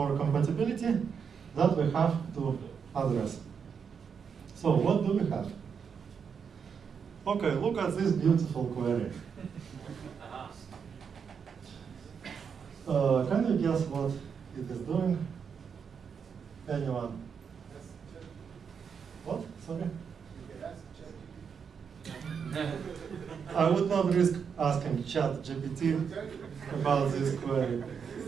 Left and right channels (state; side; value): quieter; left; 6.6 dB